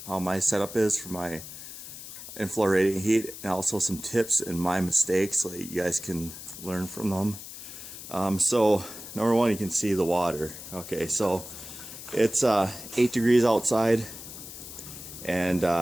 how my setup is for my inflow radiant heat, and also some tips and my mistakes so that you guys can learn from them. So number one, you can see the water. Okay, so it's 8 degrees outside, and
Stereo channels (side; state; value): left; noise; hiss, 12 dB below the sound